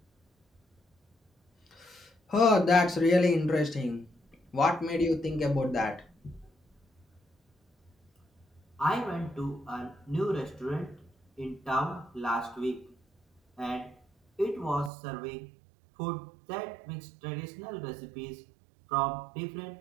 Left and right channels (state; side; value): drops out; left; at 14.9 s